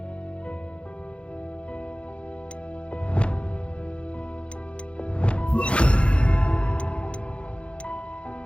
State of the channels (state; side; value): late; right; 0.059 ms